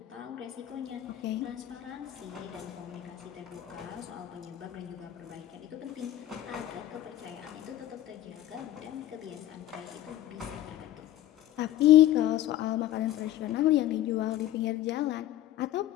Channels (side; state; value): right; quieter; 13.3 dB